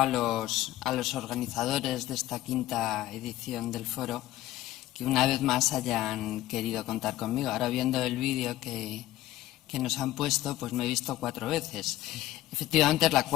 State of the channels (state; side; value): quieter; right; 15.2 dB